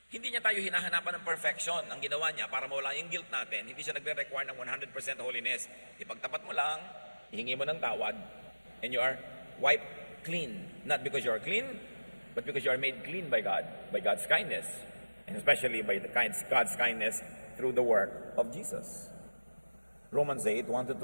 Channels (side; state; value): both; inverted; correlation -1.00